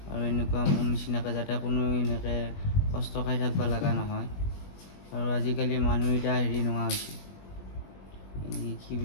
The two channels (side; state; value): right; late; 21 ms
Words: আৰু এনেকুৱা মোৰ নিচিনাকৈ যাতে কোনো এনেকৈ কষ্ট খাই থাকিব লগা নহয়। আৰু আজিকালি মানুহ এতিয়া হেৰি নোহোৱা হৈছে, কি